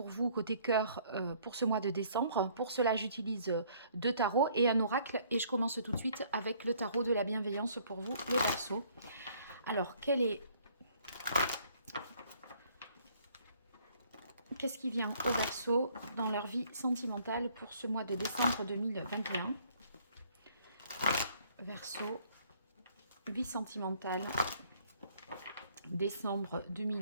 vous côté cœur pour ce mois de décembre. Pour cela, j'utilise deux tarots et un oracle. Et je commence tout de suite avec le tarot de la bienveillance pour vous les Verseaux. Alors, qu'est-ce qui vient au Verseau dans leur vie sentimentale pour ce mois de décembre 2021? Verseau, vie sentimentale, décembre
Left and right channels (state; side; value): inverted; both; correlation -0.62